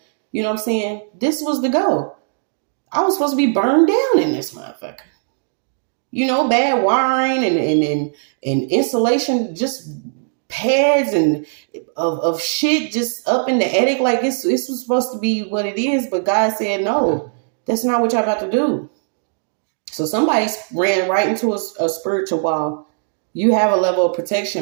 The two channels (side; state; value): left; silent; digital silence